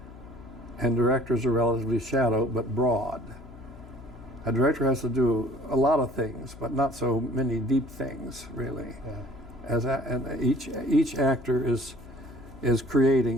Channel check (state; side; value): noise; left; hum, 18 dB below the sound